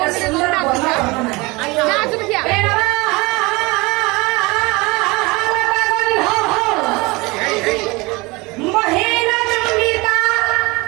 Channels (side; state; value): left; quieter; 24.2 dB